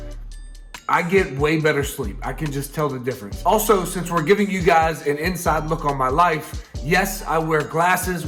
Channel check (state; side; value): identical; both; correlation 1.00